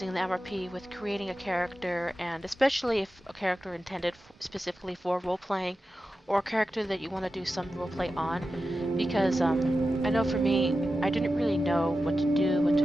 the MRP with creating a character, and especially if a character intended specifically for role-playing, or a character that you want to do some roleplay on, because I know for me, I didn't really know what to do, what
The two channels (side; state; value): both; normal; correlation 0.92